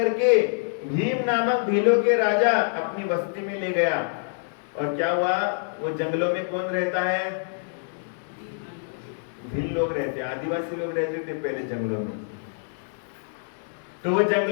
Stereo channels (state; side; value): silent; right; digital silence